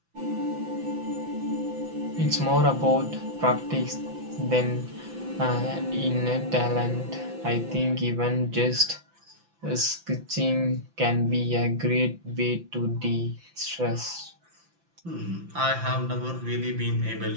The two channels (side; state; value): left; late; 5.9 ms